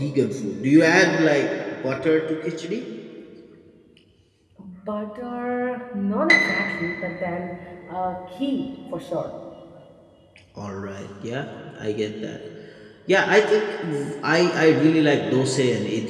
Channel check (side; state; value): both; identical; correlation 1.00